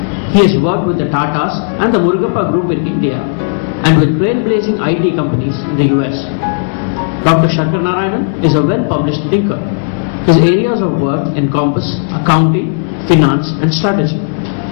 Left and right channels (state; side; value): silent; right; digital silence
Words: He has worked with the Tatas and the Murugappa Group in India and with trailblazing IT companies in the US. Dr. Sankaranarayanan is a well-published thinker. His areas of work encompass accounting, finance, and strategy.